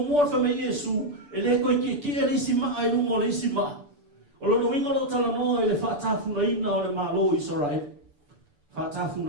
mo fa mai Yesu ele ko ki ele sima ai lu mo le sima. O lo winga lo tala no ele fa tafu na ina o le malo Israel. Fa tafu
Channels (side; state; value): left; late; 6.9 ms